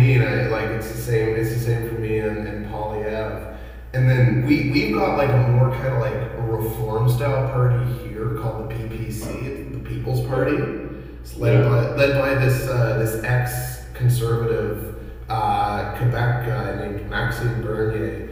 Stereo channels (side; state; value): both; identical; correlation 1.00